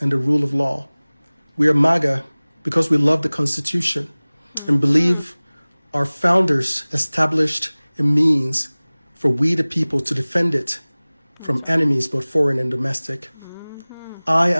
and the rule of law. We are MAGA because we love the Constitution and believe our founders established a means for we the people to defend it from enemies both foreign and domestic. I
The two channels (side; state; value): both; inverted; correlation -1.00